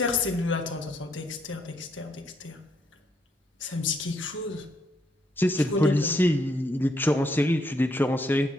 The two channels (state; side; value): normal; both; correlation 0.73